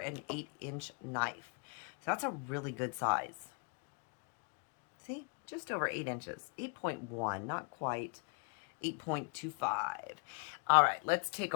8-inch knife. So that's a really good size. See, just over 8 inches, 8.1, not quite 8.25. All right, let's take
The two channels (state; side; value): quieter; right; 36.7 dB